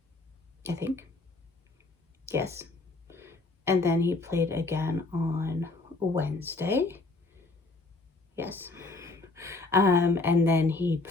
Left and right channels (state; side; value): quieter; right; 3.3 dB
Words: I think. Yes. And then he played again on Wednesday. Yes. And then he